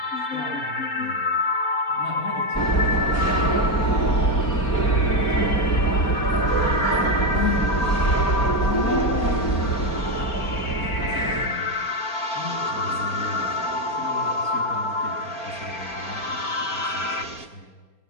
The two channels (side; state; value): right; late; 4.3 ms